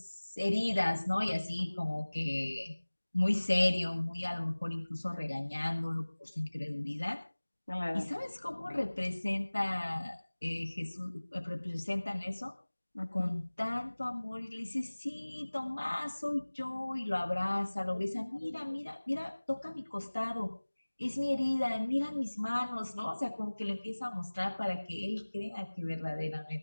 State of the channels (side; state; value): both; inverted; correlation -1.00